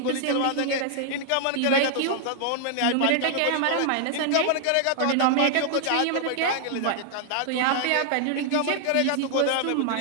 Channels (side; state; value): both; different; correlation 0.00